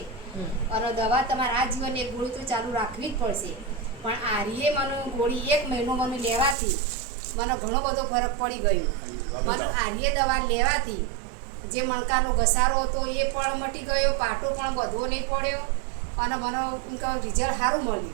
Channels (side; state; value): left; drops out; at 6.6 s